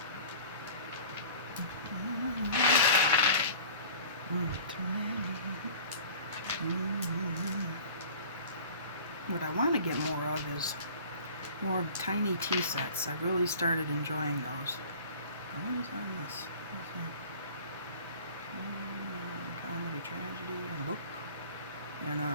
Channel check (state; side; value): inverted; both; correlation -0.43